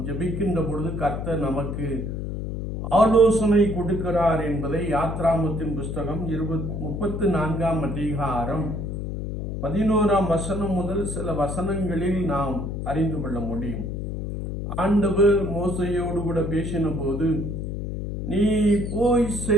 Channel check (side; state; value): left; noise; hum, 4 dB below the sound